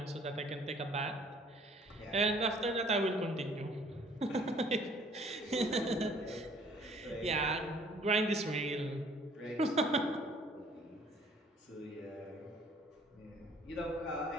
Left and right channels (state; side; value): normal; both; correlation 0.57